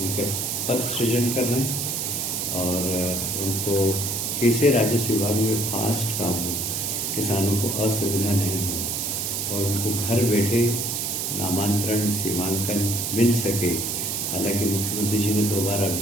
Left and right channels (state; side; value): noise; right; hiss, 1 dB below the sound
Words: उनके पद सृजन कर रहे हैं और उनको कैसे राजस्व विभाग में फास्ट काम हो, किसानों को असुविधा नहीं हो और उनको घर बैठे नामांतरण सीमांकन मिल सके। हालांकि मुख्यमंत्री जी ने 2 बार